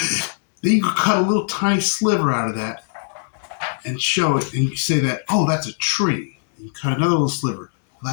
Then you could cut a little tiny sliver out of that and show it, and you say that, oh, that's a tree. And you cut another little sliver. Well,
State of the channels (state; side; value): silent; right; digital silence